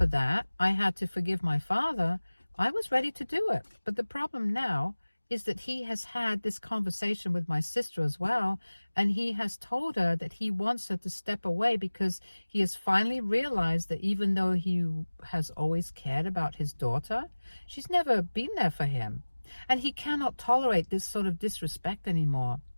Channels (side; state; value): both; inverted; correlation -1.00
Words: that, I had to forgive my father, I was ready to do it. But the problem now is that he has had this conversation with my sister as well, and he has told her that he wants her to step away because he has finally realized that even though he has always cared about his daughter, she's never been there for him, and he cannot tolerate this sort of disrespect anymore.